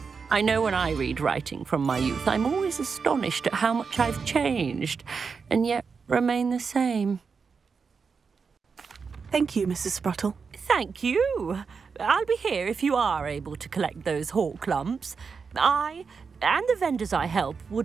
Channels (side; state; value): left; quieter; 5.4 dB